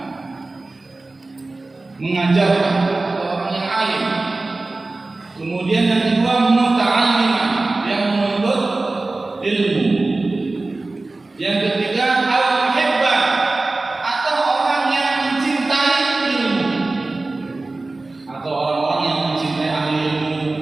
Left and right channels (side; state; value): left; quieter; 3.2 dB